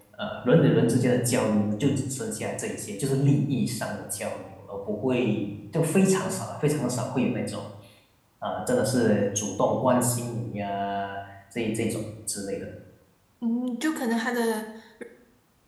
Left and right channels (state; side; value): identical; both; correlation 1.00